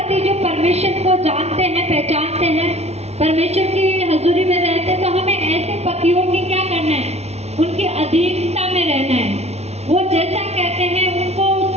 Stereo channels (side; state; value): left; late; 0.31 ms